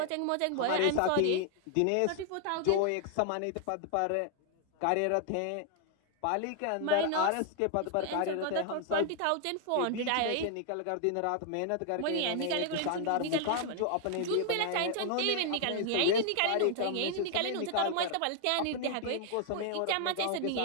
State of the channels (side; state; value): both; different; correlation 0.00